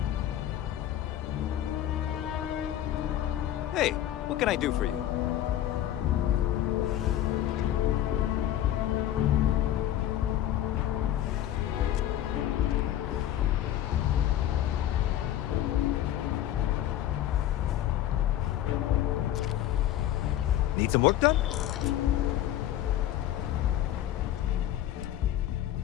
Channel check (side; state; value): right; quieter; 12.3 dB